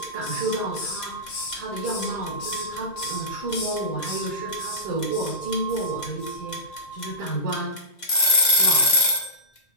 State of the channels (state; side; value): late; right; 2.1 ms